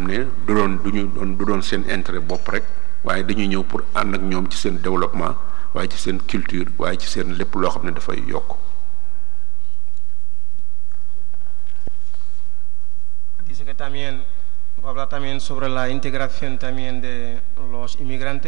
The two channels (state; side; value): quieter; left; 23.0 dB